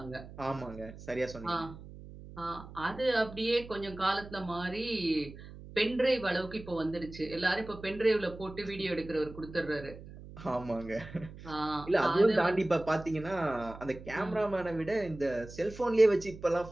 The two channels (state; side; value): noise; right; hum, 15 dB below the sound